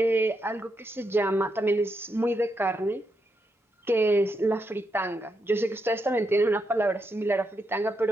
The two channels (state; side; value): normal; both; correlation 0.82